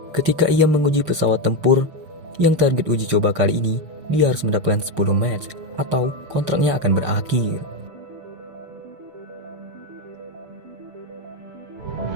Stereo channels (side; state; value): left; late; 6.6 ms